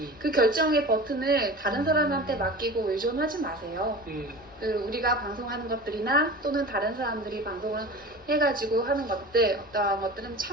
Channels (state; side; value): normal; both; correlation 0.35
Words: 그 결정의 버튼을 다른 사람한테 맡기고 의존하지 마세요. 우리가 방송하는 것들이나 또는 다른 사람들이 방송을 해가지고 하는 것들 어떠한 것들은